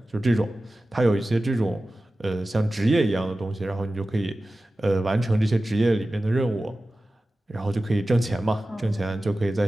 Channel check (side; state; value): both; normal; correlation 0.95